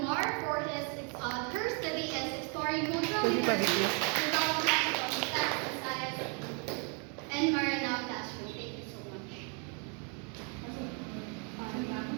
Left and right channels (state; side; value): quieter; left; 37.2 dB